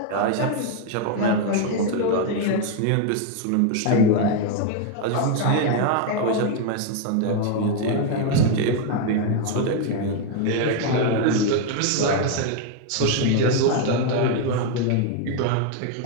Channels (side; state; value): both; different; correlation 0.01